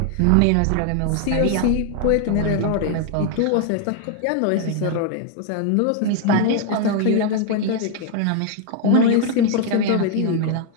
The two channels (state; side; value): different; both; correlation 0.00